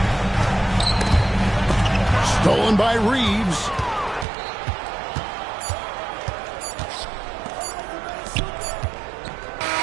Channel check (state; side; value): drops out; left; at 4.2 s